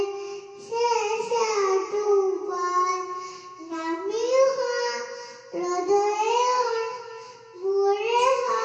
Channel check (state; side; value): identical; both; correlation 1.00